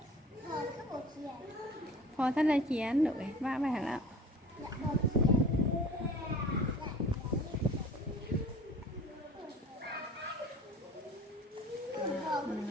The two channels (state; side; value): normal; both; correlation 0.44